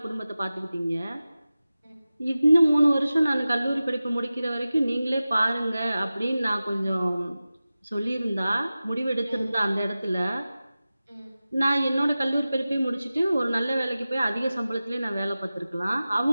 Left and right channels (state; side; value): inverted; both; correlation -0.96